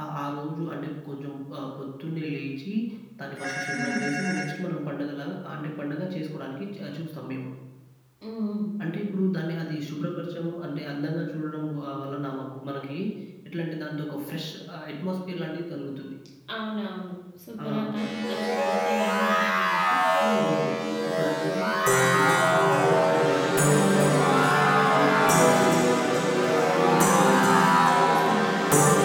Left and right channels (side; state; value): both; identical; correlation 1.00